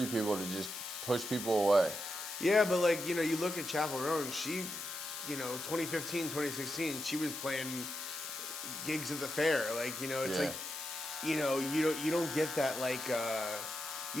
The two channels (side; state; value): left; noise; hiss, 7 dB below the sound